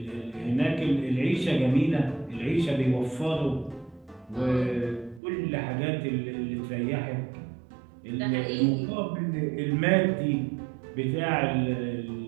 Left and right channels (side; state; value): left; drops out; at 5.2 s